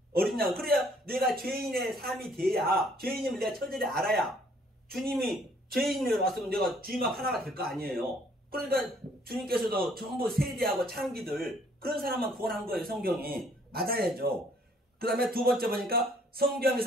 어린 양. 그래야 내가 죄인의 삶이 돼야 죄인임을 내가 처절히 알아야 주님이 죄인으로 왔으면 내가 주님 앞 하나가 될 거 아니에요. 그러니까 주님께서도 전부 세대하고 창기들 그런 사람만 구원한 거예요. 성경이. 맞아야죠. 그 다음에 두 번째 보니까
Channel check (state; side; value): normal; both; correlation 0.62